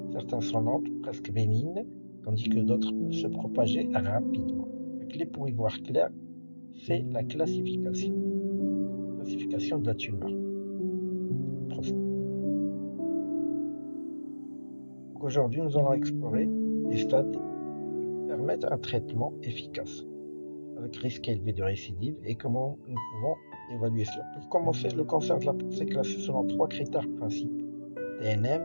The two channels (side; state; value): both; inverted; correlation -1.00